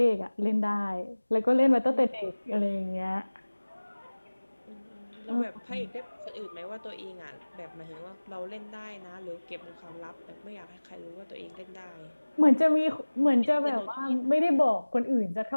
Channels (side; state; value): both; inverted; correlation -1.00